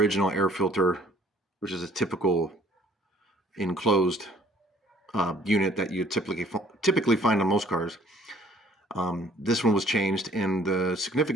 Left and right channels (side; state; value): both; normal; correlation 0.57